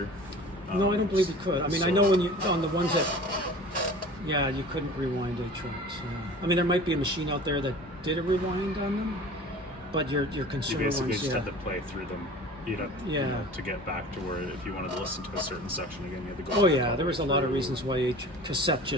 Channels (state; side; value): normal; both; correlation 0.41